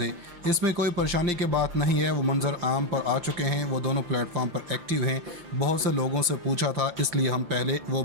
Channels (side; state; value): left; late; 5.7 ms